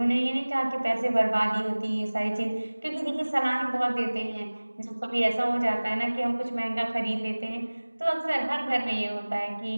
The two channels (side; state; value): both; inverted; correlation -1.00